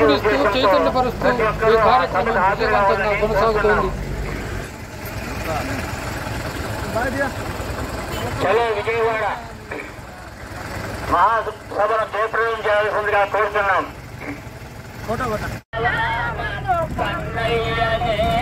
చైతన్యపరుస్తూ ఈ కార్యక్రమం విజయవంతంగా కొనసాగుతోంది. విజయవాడ మహాసభను జయప్రదం చేయాల్సిందిగా కోరుతున్నాం.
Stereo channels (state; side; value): identical; both; correlation 1.00